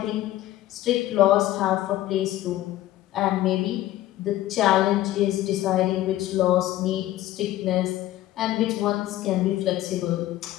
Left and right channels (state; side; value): quieter; right; 14.7 dB